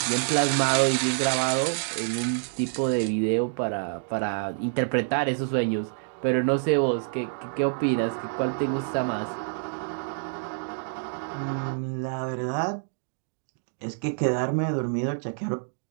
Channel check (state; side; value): silent; left; digital silence